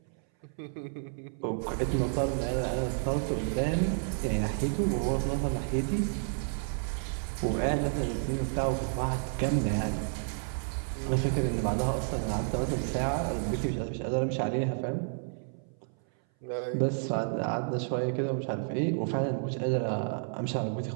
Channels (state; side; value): silent; left; 57 dB below the other